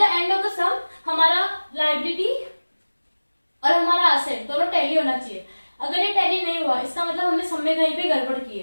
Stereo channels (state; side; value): inverted; both; correlation -1.00